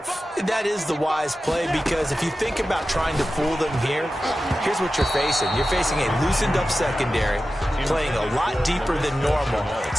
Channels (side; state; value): both; normal; correlation 0.93